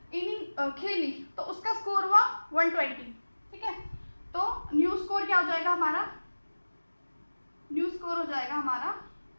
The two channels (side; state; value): both; inverted; correlation -1.00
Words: इनिंग खेली तो उसका स्कोर हुआ 120, ठीक है। तो न्यू स्कोर क्या हो जाएगा हमारा, न्यू स्कोर हो जाएगा हमारा